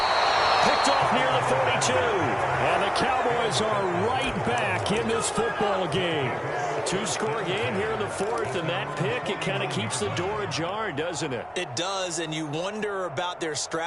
Picked off near the 42. And the Cowboys are right back in this football game. 2-score game here in the 4th, and that pick, it kind of keeps the door ajar, doesn't it? It does, and you wonder about their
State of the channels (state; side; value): identical; both; correlation 1.00